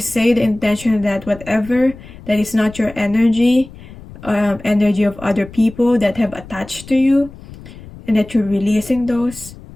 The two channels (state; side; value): noise; left; rumble, 18 dB below the sound